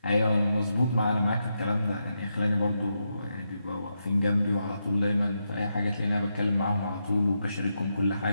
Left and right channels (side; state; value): both; inverted; correlation -0.85